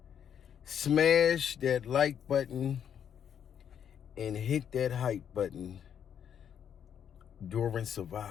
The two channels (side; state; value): right; quieter; 8.6 dB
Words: Smash that like button and hit that hype button during